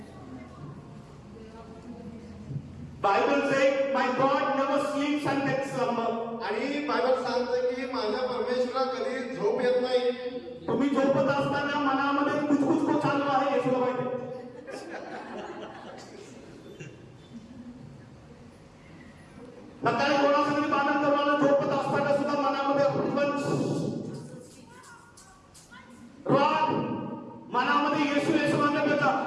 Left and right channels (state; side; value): identical; both; correlation 1.00